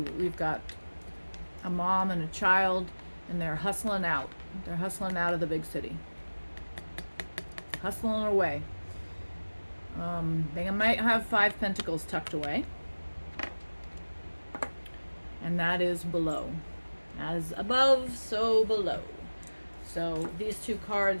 got a mom and a child, and they're hustling out. They're hustling out of the big city. Hustling away. They might have 5 pentacles tucked away. And that is below. As above, so below. So these two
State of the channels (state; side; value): inverted; both; correlation -1.00